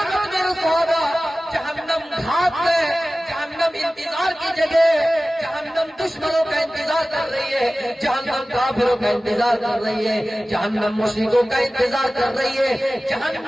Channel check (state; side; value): normal; both; correlation 0.97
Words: مِرْصَادًا، جہنم گھات ہے، جہنم انتظار کی جگہ، جہنم دشمنوں کا انتظار کر رہی ہے، جہنم کافروں کا انتظار کر رہی ہے، جہنم مشرکوں کا انتظار کر رہی ہے،